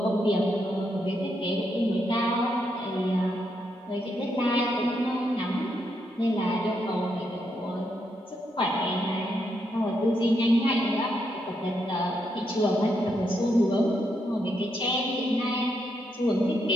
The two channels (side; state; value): both; normal; correlation 0.79